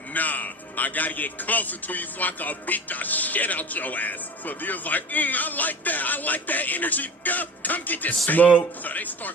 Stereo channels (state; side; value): normal; both; correlation 0.36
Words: nah, I gotta get closer to you so I can beat the shit out your ass. So Dio's like, I like that energy, nigga. Come get this Smoke. thing. So they